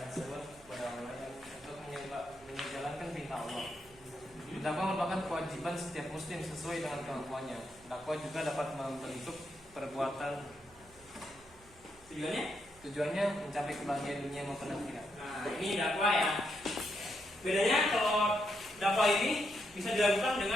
seruan kepada orang lain untuk menjalankan perintah Allah. Dakwah merupakan kewajiban setiap muslim sesuai dengan kemampuannya. Dakwah juga dapat membentuk perbuatan. Tujuannya mencapai kebahagiaan dunia maupun akhirat. Nah, ini dakwah ya. Bedanya kalau dakwah ini bisa dilakukan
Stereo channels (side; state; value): right; noise; hum, 26 dB below the sound